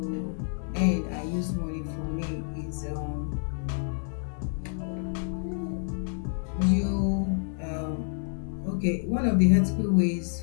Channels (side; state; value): right; silent; 59 dB below the other